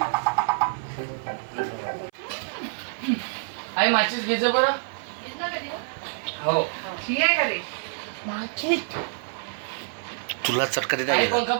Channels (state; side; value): silent; left; 58 dB below the other